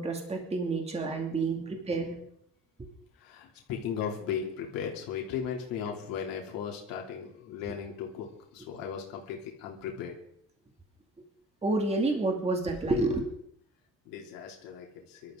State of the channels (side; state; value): both; normal; correlation 0.40